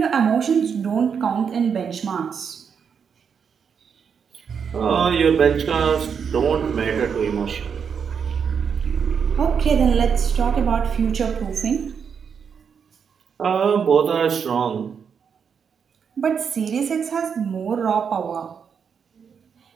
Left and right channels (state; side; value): quieter; left; 6.8 dB